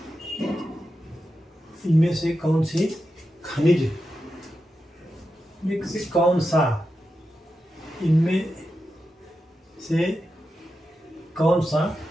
इनमें से कौन सी खनिज में से कौन सा, इनमें से कौन सा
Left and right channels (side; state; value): both; normal; correlation 0.89